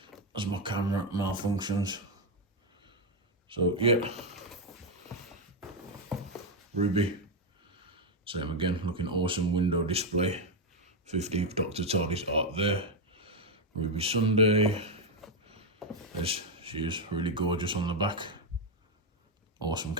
as my camera malfunctions. So yeah, Ruby, same again, looking awesome. Window display, 15th Doctor Tardis art there. Ruby Sunday, as she is really gorgeous on the back. Awesome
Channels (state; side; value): normal; both; correlation 0.04